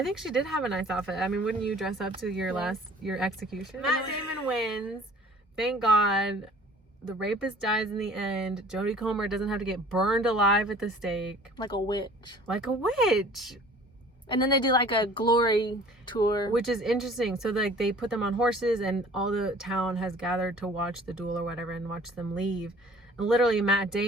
think she did have a nice outfit. I mean, wouldn't you dress up to your execution? Matt Damon wins. Thank God. The rapist dies in the end. Jodie Comer doesn't have to get burned alive at the stake. Like a witch. Like a witch. And then they do like a glory tour. Which is interesting. So like they put them on horses, and all the town has gathered to watch the duel or whatever and watch them leave. And literally Matt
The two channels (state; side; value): normal; both; correlation 0.49